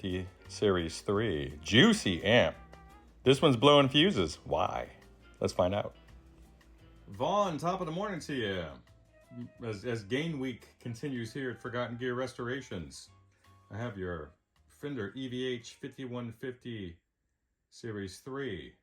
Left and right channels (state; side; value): identical; both; correlation 1.00